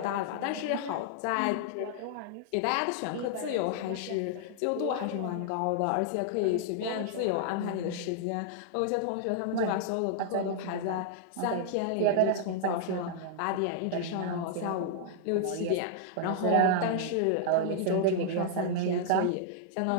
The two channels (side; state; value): both; different; correlation -0.01